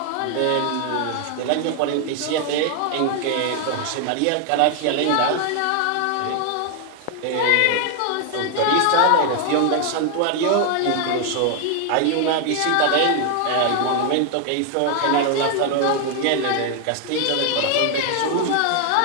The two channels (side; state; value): both; different; correlation 0.00